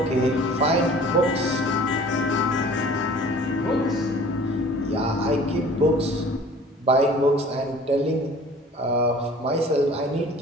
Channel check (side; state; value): both; normal; correlation 0.47